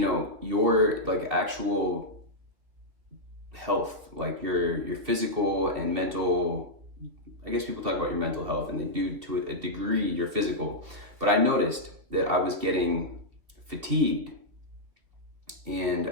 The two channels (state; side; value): late; left; 2.9 ms